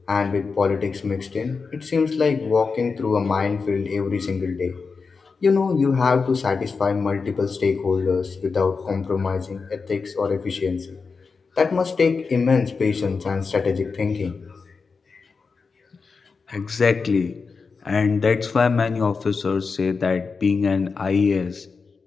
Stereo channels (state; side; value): quieter; right; 4.8 dB